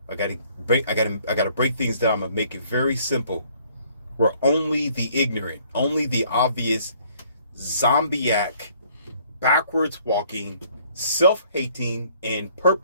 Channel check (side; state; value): both; inverted; correlation -0.61